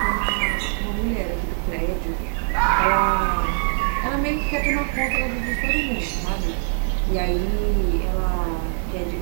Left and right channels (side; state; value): left; silent; digital silence